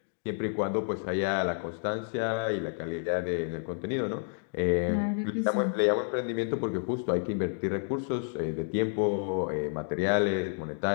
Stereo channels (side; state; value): right; silent; digital silence